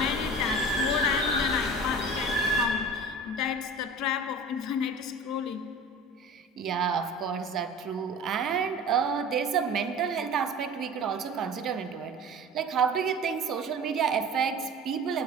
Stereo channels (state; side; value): normal; both; correlation 0.37